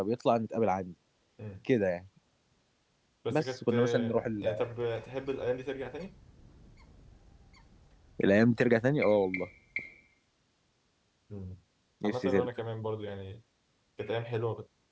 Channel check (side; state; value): both; identical; correlation 1.00